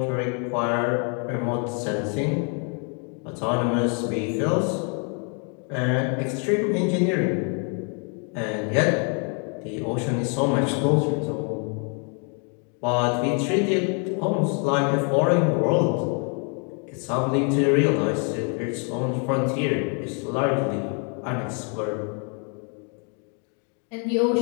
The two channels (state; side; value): quieter; right; 39.1 dB